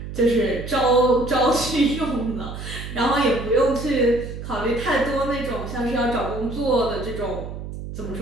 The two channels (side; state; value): right; noise; hum, 9 dB below the sound